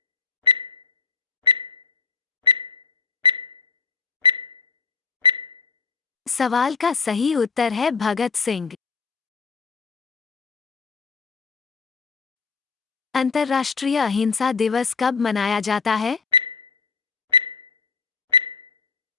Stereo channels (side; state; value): right; quieter; 4.8 dB